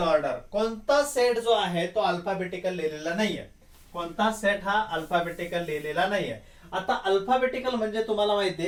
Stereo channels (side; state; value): both; identical; correlation 1.00